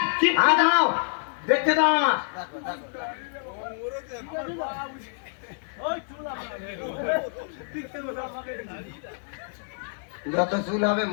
হ্যাঁ দাঁড়াও দেখতে দাও আমার যত চুল হবে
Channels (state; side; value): silent; right; 60 dB below the other